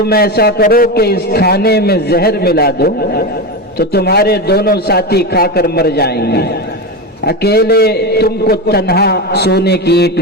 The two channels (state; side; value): normal; both; correlation 0.18